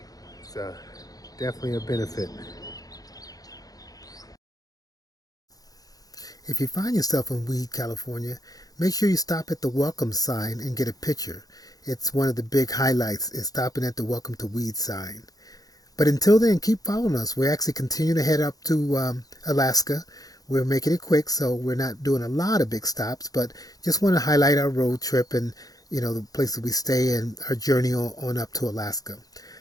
it's definitely a benefit. If you find yourself in Weed, California, make sure you stop at the welcome sign and get a picture. It's one of the big highlights is stopping at the welcome to Weed sign. But until then, keep following us. We're actually continuing to head up to Alaska. We're making it quick, so we're not doing a lot of big stops, but just want to highlight our road trip and, the places we stay and our journey on up to Alaska.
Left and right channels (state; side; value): late; right; 0.18 ms